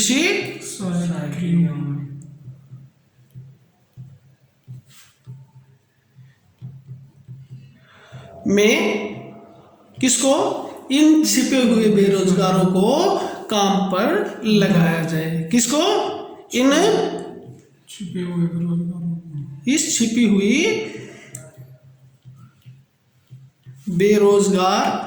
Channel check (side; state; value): both; identical; correlation 1.00